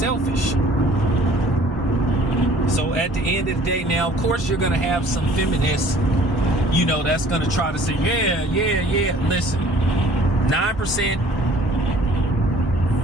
So at the end of the day, now, of course, you're going to have some feminists, that's going to try to say, yeah. Listen,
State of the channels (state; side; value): normal; both; correlation 0.52